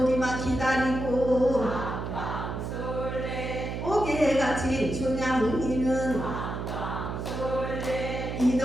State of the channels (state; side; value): noise; right; hum, 5 dB below the sound